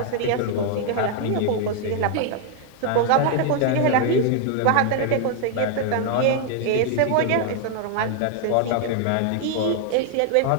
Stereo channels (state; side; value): different; both; correlation 0.00